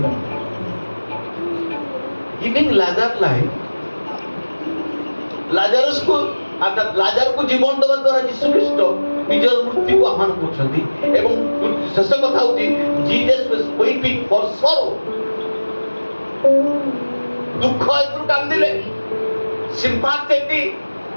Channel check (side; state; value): both; inverted; correlation -1.00